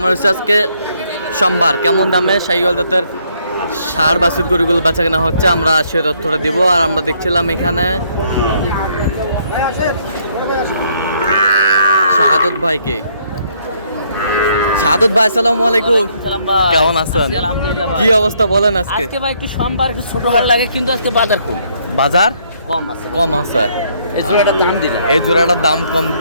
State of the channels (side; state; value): both; inverted; correlation -0.69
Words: হচ্ছে আজকে সোমবার। কেমন দামে শাহিওয়াল জাতের ষাঁড় বাছুর গরুগুলো বেচা কেনা হচ্ছে আমরা সে তথ্যটা দিব। আর আমরা দেখছিলাম এখানে শাহাদত ভাইকে। শাহাদত ভাই আসসালামু আলাইকুম, কেমন আছেন? কি অবস্থা বলেন? আজকে ভাই একটু সোমবার একটু ছোট হাট লাগে, কিন্তু আজকে বাজার কম। বাজার কম আছে। এই জোড়াটার দাম দিলাম, এই জোড়াটার দাম কম